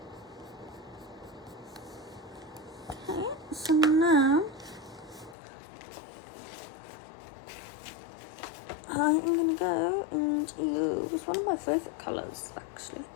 my favourite colours actually,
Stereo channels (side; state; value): right; drops out; at 5.4 s